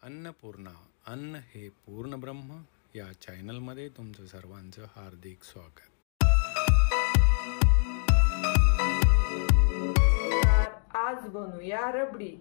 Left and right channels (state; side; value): silent; right; 60 dB below the other